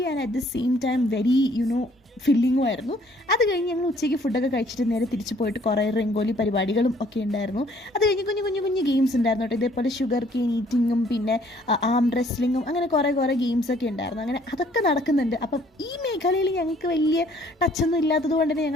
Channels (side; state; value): both; normal; correlation 0.61